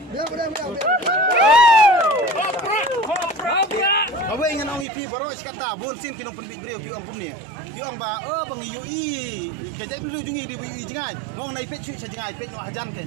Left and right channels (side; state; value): left; drops out; at 4.9 s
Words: Kau ingin orang ipi baru kata bon sin tinong penbik beliau piong kumni. Piong ba bang yui kerja dulu jungi di yui jengai. Ngong naik pet cuci jengai pet no hajan